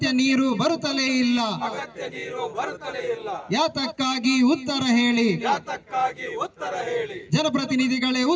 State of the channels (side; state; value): both; identical; correlation 1.00